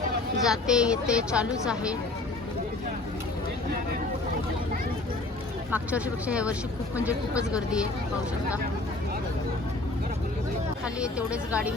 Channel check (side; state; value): right; quieter; 3.1 dB